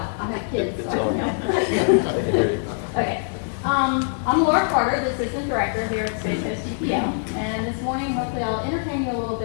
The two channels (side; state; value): right; silent; 63 dB below the other